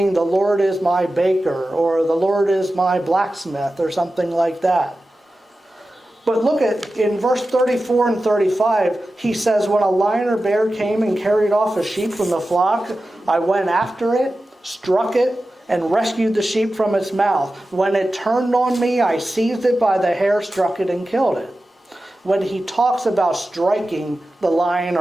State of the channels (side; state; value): both; normal; correlation 0.94